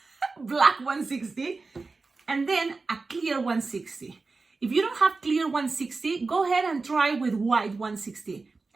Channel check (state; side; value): quieter; left; 3.9 dB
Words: black 160, and then a clear 160. If you don't have clear 160, go ahead and try with white 160.